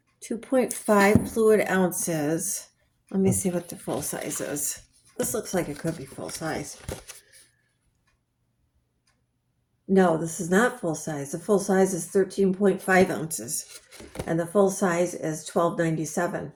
2.5 fluid ounces. Let me see what the full size is. This looks like it could be full size. No, this is not full size. The full size is 13.5 ounces. And the full size is $12.97.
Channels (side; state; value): both; identical; correlation 1.00